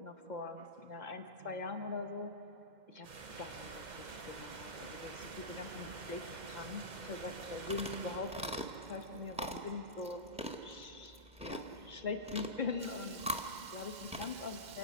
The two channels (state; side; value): late; left; 2.1 ms